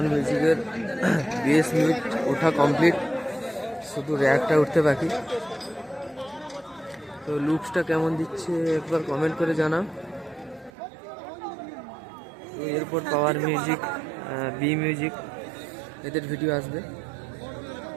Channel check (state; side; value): drops out; left; at 10.7 s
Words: মিউজিকের বেস মিট ওঠা কমপ্লিট, শুধু র্যাকটা উঠতে বাকি। তো লুকসটা কেমন দিচ্ছে একবার কমেন্ট করে জানাও। তো এরপর পাওয়ার মিউজিক, বি মিউজিক, এদের ভিডিও আসবে।